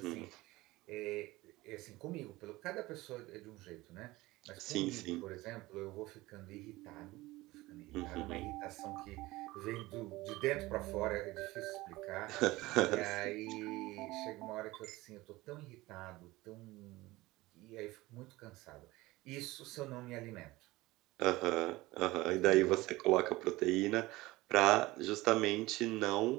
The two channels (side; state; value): left; quieter; 19.5 dB